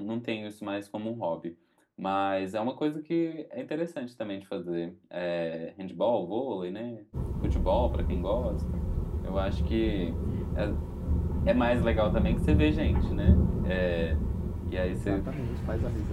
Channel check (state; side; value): identical; both; correlation 1.00